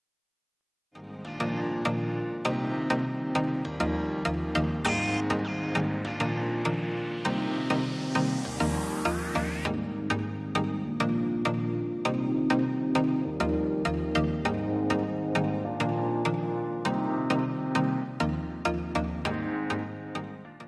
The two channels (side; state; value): both; identical; correlation 1.00